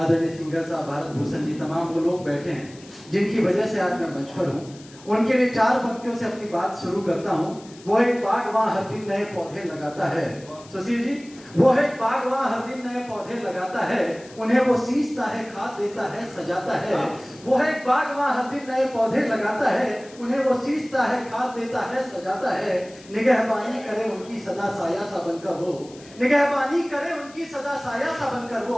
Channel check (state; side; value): noise; left; hiss, 22 dB below the sound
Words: सिंगर साहब, भारत भूषण जी, तमाम वो लोग बैठे हैं जिनकी वजह से आज मैं मंच पर हूँ। उनके लिए 4 पंक्तियों से अपनी बात शुरू करता हूँ। वो एक बाग वहाँ हर दिन नए पौधे लगाता है। सुशील जी, वो एक बाग वहाँ हर दिन नए पौधे लगाता है, उन्हें वो सींचता है, खाद देता है, सजाता है। वो एक बाग वहाँ हर दिन नए पौधे लगाता है, उन्हें वो सींचता है, खाद देता है, सजाता है। निगहबानी करे उनकी सदा साया सा बनकर वो, निगहबानी करे उनकी सदा साया सा बनकर